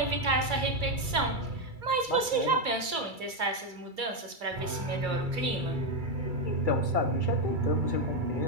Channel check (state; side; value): late; left; 2.3 ms